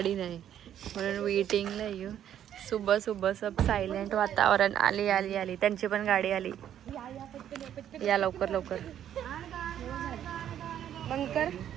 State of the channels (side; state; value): left; quieter; 10.4 dB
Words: नाही म्हणून वेटिंगला येऊ. सुबह सुबह सब सायलेंट वातावरण. आली त्यांची पण गाडी आली. या लवकर लवकर बंद कर.